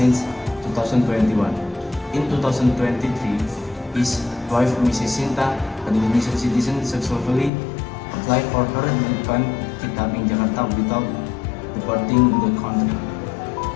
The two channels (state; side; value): drops out; right; at 7.5 s